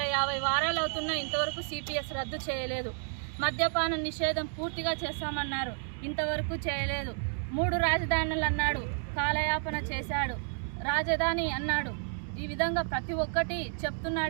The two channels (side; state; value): left; silent; 57 dB below the other